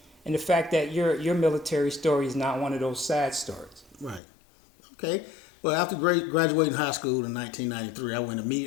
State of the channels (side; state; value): right; drops out; at 4.2 s